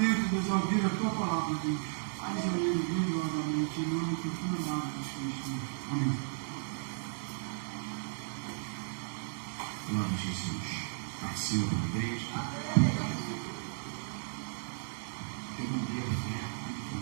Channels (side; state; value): left; silent; 55 dB below the other